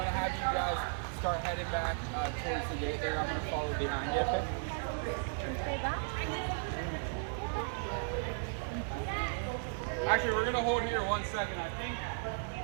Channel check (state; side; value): silent; left; digital silence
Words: to have you guys start heading back towards the gate there. I'm going to follow behind you. Actually, we're going to hold here 1 second. I think